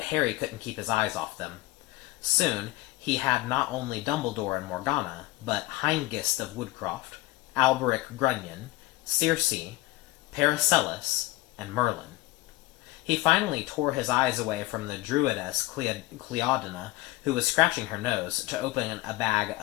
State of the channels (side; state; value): right; quieter; 19.2 dB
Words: Harry couldn't keep his eyes off them. Soon, he had not only Dumbledore and Morgana, but Hengist of Woodcroft, Alberic Grunion, Circe, Paracelsus, and Merlin. He finally tore his eyes away from the druidess Cleodina, who was scratching her nose, to open a bag